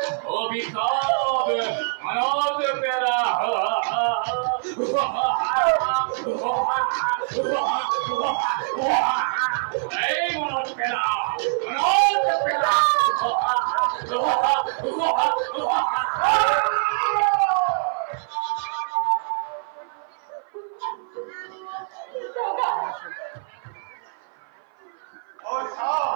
অভিকাপ মনজ পেলা এই মনজ পেলা মনজ পেলা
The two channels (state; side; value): silent; left; 57 dB below the other